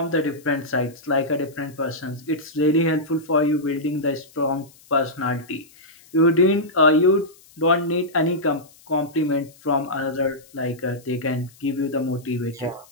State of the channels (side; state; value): left; noise; hiss, 26 dB below the sound